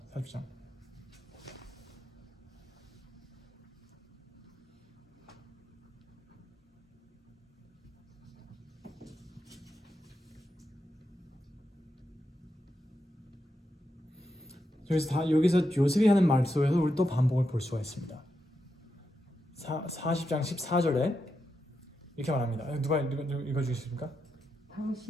여기서 요셉이 하는 말 속에서 우리 또 반복을 볼 수가 있습니다. 40장 14절에 이렇게 말합니다. 누가 읽어주시겠습니까?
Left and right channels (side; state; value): both; normal; correlation 0.85